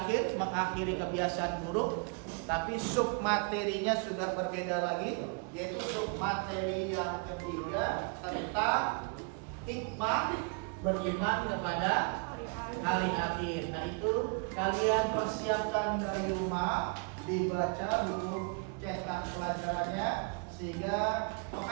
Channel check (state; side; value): quieter; left; 36.7 dB